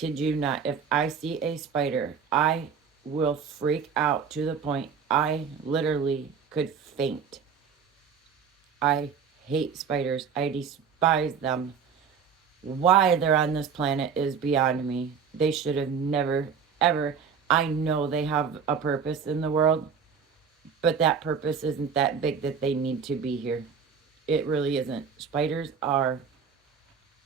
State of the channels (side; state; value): left; quieter; 6.5 dB